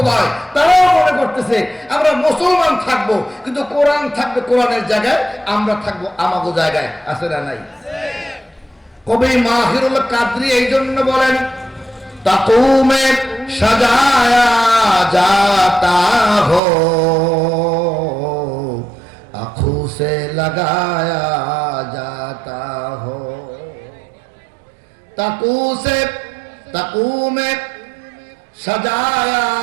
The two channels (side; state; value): left; drops out; at 16.6 s